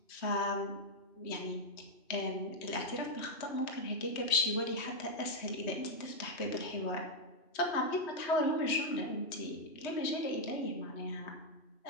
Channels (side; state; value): right; late; 3.1 ms